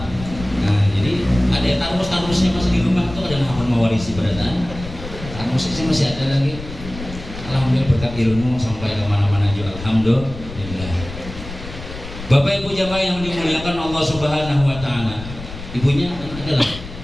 Nah jadi ada tarmus-tarmusnya masih di rumah tuh ada hafal mewarisi berataan tarmusnya masih ada lagi. Alhamdulillah berkat ilmu sampai kemana-mana juga alhamdulillah. Bapak Ibu jamaah yang dimuliakan Allah Subhanahu Wa Taala, ibunya adalah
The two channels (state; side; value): noise; left; rumble, 12 dB below the sound